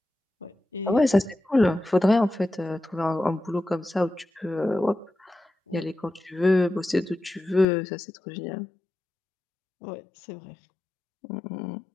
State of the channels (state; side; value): drops out; right; at 7.7 s